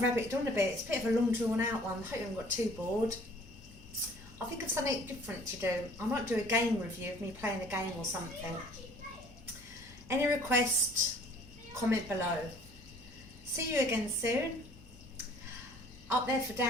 rabbited on a bit. It's a bit of a long drawn out one. I hope you haven't got too bored. I think of something different to do. I might do a game review of me playing a game or something. Any request, comment below. See you again soon. Up there for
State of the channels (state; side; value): normal; both; correlation 0.53